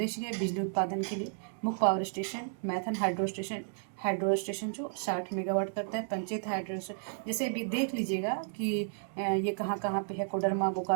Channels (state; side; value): silent; left; digital silence